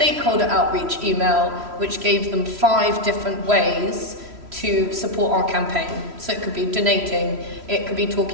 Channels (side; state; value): left; late; 3.0 ms